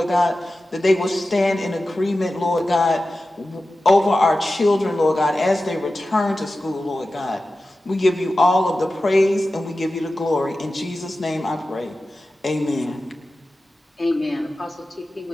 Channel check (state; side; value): normal; both; correlation 0.94